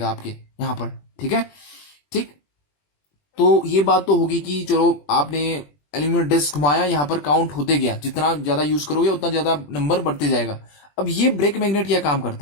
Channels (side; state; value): right; late; 20 ms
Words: आपके यहां पर, ठीक है। ठीक, तो ये बात तो होगी कि चलो आपने एल्यूमिनियम डिस्क घुमाया, यहां पर काउंट होते गया, जितना ज्यादा यूज करोगे उतना ज्यादा नंबर बढ़ते जाएगा। अब ये ब्रेक मैग्नेट क्या काम